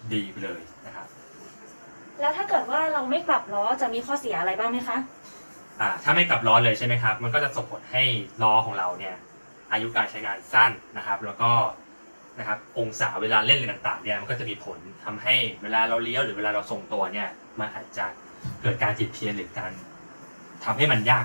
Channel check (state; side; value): inverted; both; correlation -1.00